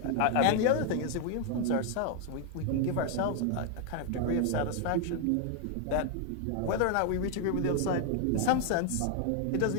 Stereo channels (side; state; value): both; different; correlation 0.00